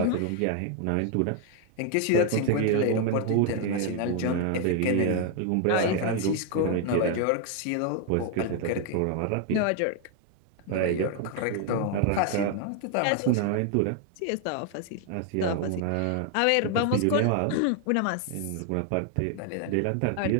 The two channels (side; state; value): both; different; correlation 0.00